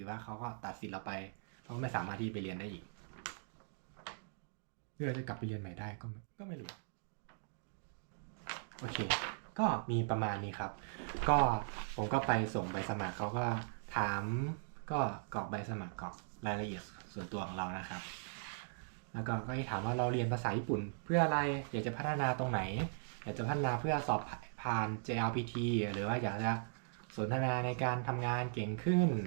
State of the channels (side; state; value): left; silent; digital silence